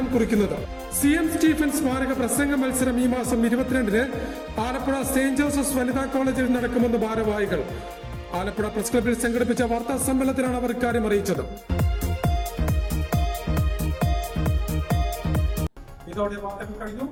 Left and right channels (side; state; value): both; identical; correlation 1.00